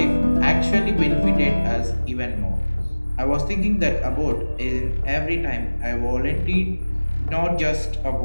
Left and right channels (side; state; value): both; inverted; correlation -1.00